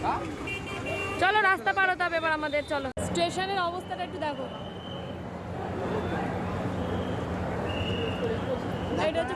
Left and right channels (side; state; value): both; identical; correlation 1.00